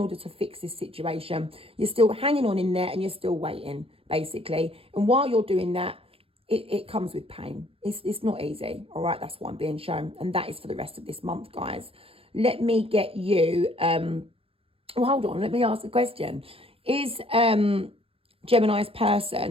to fix this situation. You're still hanging on in there and you're still waiting, basically. And while you're doing that, it comes with pain. It's not easy. All right, that's what I'm being shown. And that is for the rest of this month, guys. Let me get you, well, hold on, let me ask a question. Is Gemini's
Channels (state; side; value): late; left; 0.27 ms